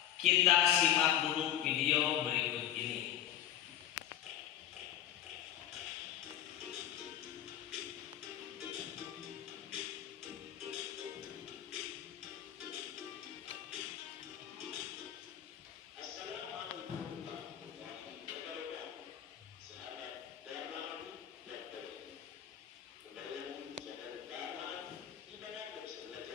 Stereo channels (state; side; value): quieter; right; 11.3 dB